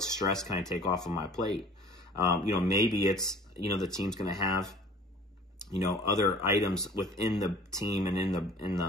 stress can I take off of my plate? Maybe it's, the team's going to have, other items within the team and in the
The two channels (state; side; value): normal; both; correlation 0.48